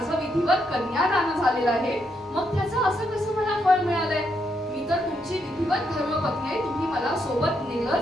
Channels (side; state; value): both; normal; correlation 0.78